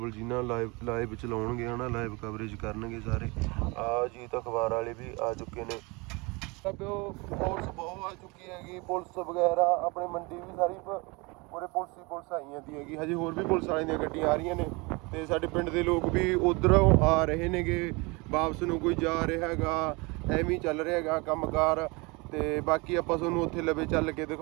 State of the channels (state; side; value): quieter; left; 26.9 dB